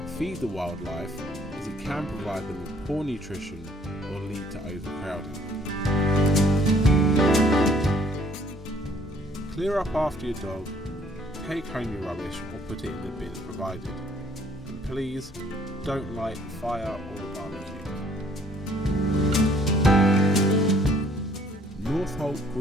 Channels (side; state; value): both; normal; correlation 0.61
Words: feed the wildlife, as it can provide them with poor nutrition or lead to overcrowding. Clear up after your dog, take home your rubbish or put it in the bin provided. And please don't light the fire or the barbecue. Northolt